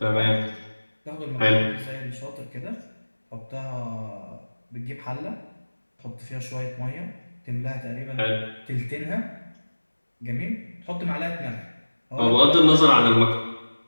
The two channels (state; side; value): inverted; both; correlation -1.00